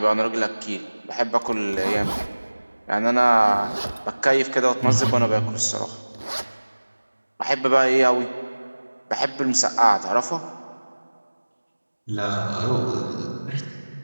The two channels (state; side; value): inverted; both; correlation -1.00